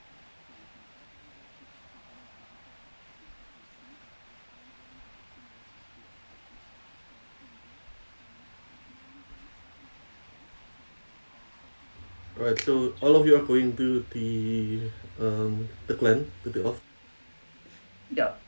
Alright, so all of you are going to the clan, to the office. Yeah.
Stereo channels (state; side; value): inverted; both; correlation -1.00